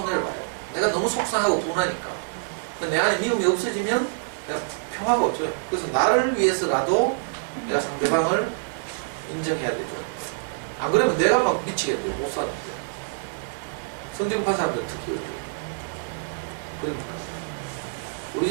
봐요. 내가 너무 속상하고 분하니까. 내 안에 미움이 없어지면 내가 평화가 없어요. 그래서 나를 위해서라도 내가 상대방을 인정해야 되죠. 안 그러면 내가 막 미치겠대요. 못 사는데. 성정파 사람들 특히 어려워요. 그러니까 우리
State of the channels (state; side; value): silent; left; 61 dB below the other